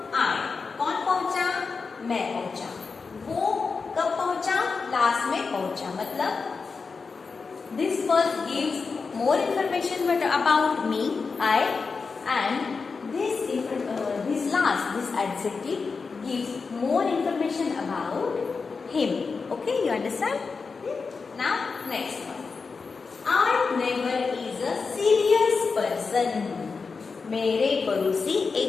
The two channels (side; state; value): right; quieter; 4.8 dB